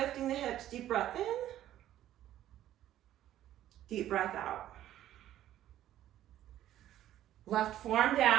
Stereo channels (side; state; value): left; quieter; 12.7 dB